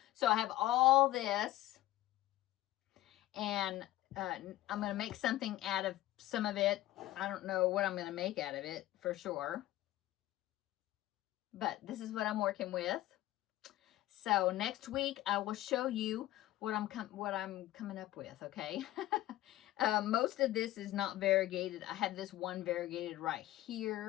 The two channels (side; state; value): right; quieter; 15.5 dB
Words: So I have all this, and I'm going to make something out of some of it. I don't know what I'm going to make out of it for sure, but this is what I'm working with. So next week I will show you what I'm coming up with. Okay. Most of this is not variegated. I have this one variegated right